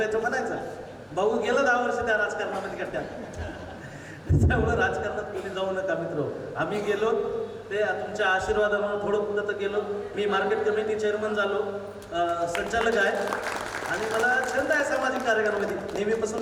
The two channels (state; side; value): identical; both; correlation 1.00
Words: म्हणायचं. भाऊ गेलं 10 वर्ष त्या राजकारणामध्ये कट्ट्यात. त्यामुळं राजकारणात कोणी जाऊ नका मित्र. आम्ही गेलो ते तुमच्या आशीर्वादामुळे थोडं पुढं तर गेलो. मी मार्केट कमिटी चेअरमन झालो, संचालक आहे. आणि मला छंद आहे सामाजिक कार्यामध्ये,